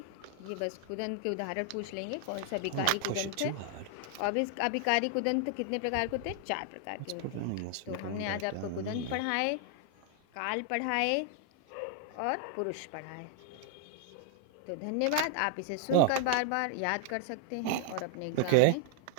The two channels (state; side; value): different; both; correlation 0.00